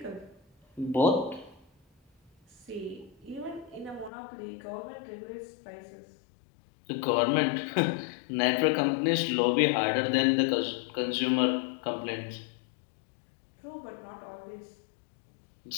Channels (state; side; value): drops out; right; at 4.1 s